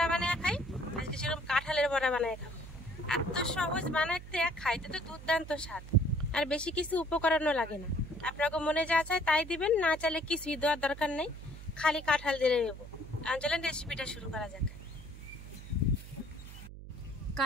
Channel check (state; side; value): noise; right; hum, 13 dB below the sound